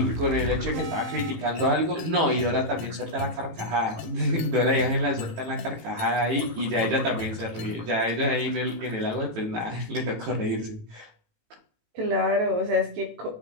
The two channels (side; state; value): left; late; 18 ms